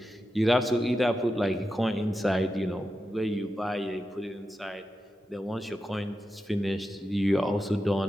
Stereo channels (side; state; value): both; normal; correlation 0.89